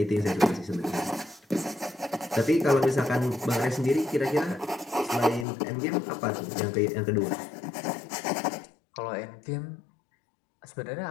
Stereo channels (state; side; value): drops out; right; at 5.5 s